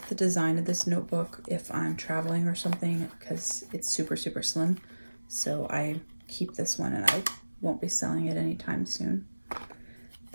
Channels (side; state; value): both; inverted; correlation -1.00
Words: the design of this notebook if I'm traveling or something because it's super, super slim. So I keep this one and I won't be selling it anytime soon.